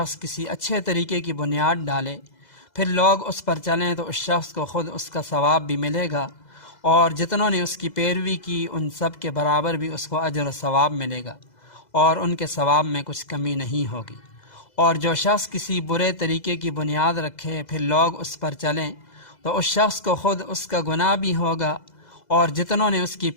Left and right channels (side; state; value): right; late; 2.0 ms